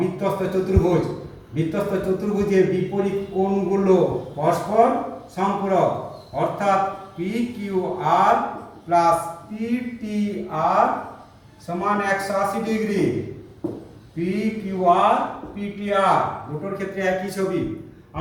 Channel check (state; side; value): identical; both; correlation 1.00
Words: চতুর্ভুজ। বৃত্তস্থ চতুর্ভুজের বিপরীত কোণগুলো পরস্পর সম্পূরক, অর্থাৎ P Q R plus P T আর সমান 180 ডিগ্রি। পি কিউ আর পি টি আর দুটোর ক্ষেত্রে একই ছবি।